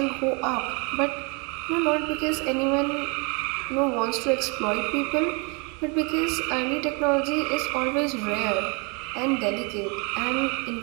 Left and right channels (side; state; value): left; quieter; 32.5 dB